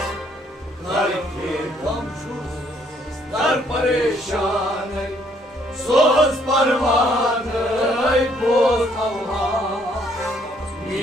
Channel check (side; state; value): both; normal; correlation 0.67